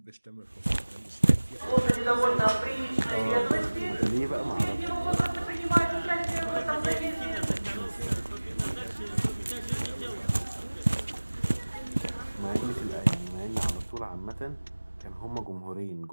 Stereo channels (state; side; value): inverted; both; correlation -1.00